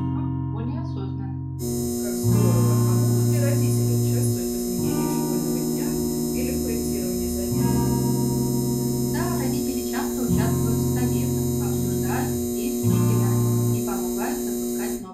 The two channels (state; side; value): identical; both; correlation 1.00